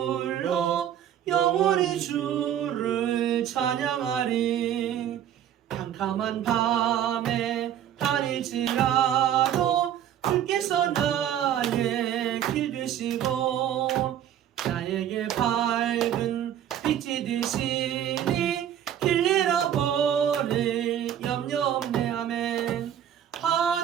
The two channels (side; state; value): left; quieter; 10.4 dB